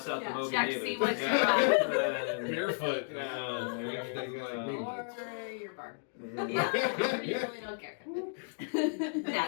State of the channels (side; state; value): right; silent; digital silence